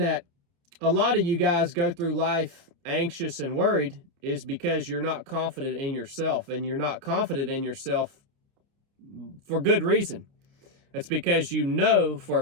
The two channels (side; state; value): left; late; 29 ms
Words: a lot of you guys go through life anxious and worried is because you're not confident in yourself, and you're not confident in yourself for good reason. It's because you know for